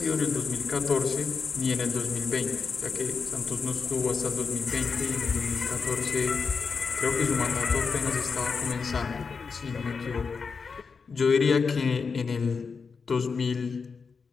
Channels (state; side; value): quieter; right; 5.2 dB